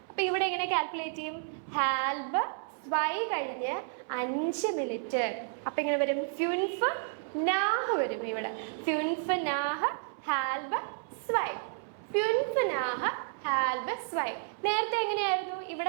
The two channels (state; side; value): silent; left; 57 dB below the other